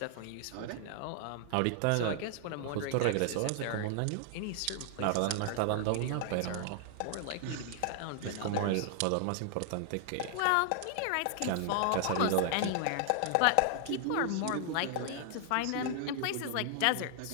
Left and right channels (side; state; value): both; different; correlation 0.00